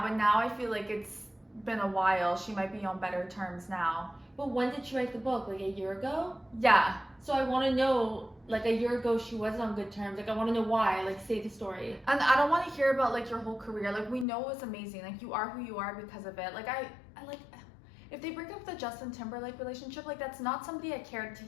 but now I feel like it's been a while. She might be on better terms now. But when did she write the book? Like a year ago? Yeah. So I want to know, like a year ago she was on good terms. Like I want to know why. Like say the story. And I don't want to hear about like your whole career. Like we know it's amazing. Like you are who you are because of it. Like I like if they break up the Justin Timberlake relationship, like that's not somebody I cared to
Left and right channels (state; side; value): drops out; right; at 14.2 s